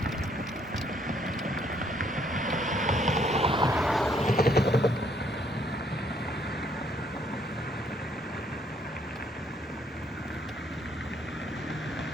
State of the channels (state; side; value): normal; both; correlation 0.67